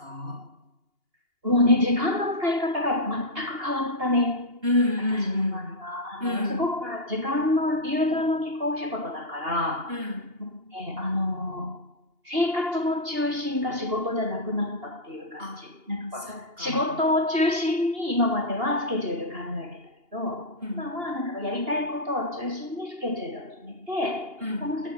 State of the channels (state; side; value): late; left; 2.8 ms